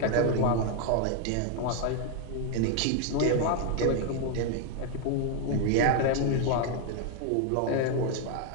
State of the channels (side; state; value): both; different; correlation 0.00